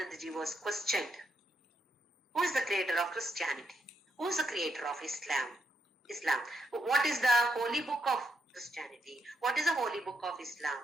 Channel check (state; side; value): normal; both; correlation 0.79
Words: was questioned. Who is the creator of Christianity? Who is the creator of Islam? What is the holy book of Christianity? What is the holy book of Islam?